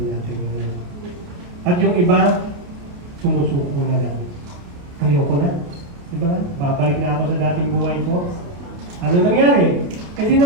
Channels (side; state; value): left; late; 28 ms